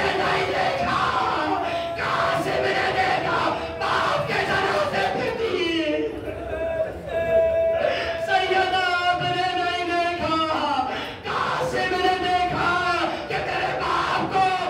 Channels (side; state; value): both; identical; correlation 1.00